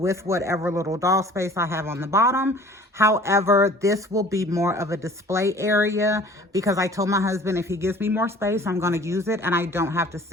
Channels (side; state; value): both; normal; correlation 0.48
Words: whatever little doll space I have on the bottom. However, this will be more of a display area because I told my husband if he gives me more space, I'm going to use it, and I don't have to